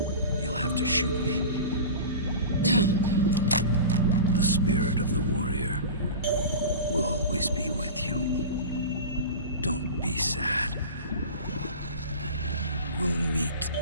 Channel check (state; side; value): inverted; both; correlation -0.32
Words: you'll have to shoot me. The spirit of the warrior will always be with you. Don't be sad. We'll meet